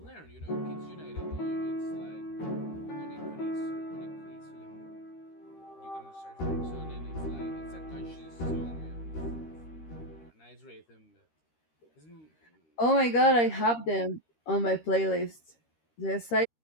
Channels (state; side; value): late; right; 13 ms